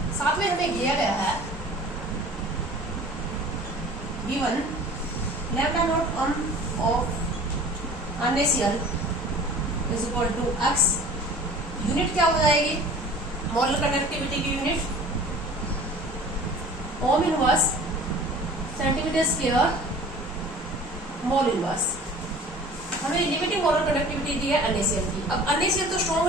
साथ में हमें दिया गया है given lambda naught of NaCl is equal to x. Unit क्या हो जाएगी मोलर कंडक्टिविटी की unit? Ohm inverse centimetre square mole inverse. हमें लिमिटिंग मोलर कंडक्टिविटी दी है NaCl की. अब NaCl तो स्ट्रॉन्ग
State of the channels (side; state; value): both; normal; correlation 0.45